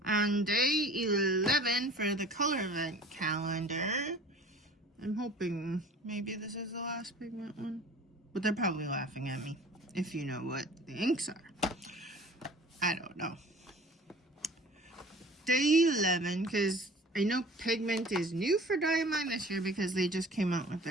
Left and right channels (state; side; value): normal; both; correlation 0.45